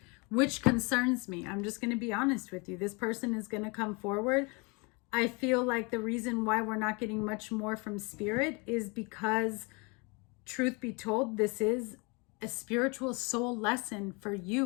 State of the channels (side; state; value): right; quieter; 29.6 dB